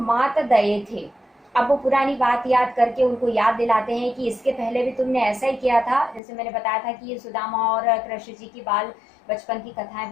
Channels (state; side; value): drops out; right; at 6.2 s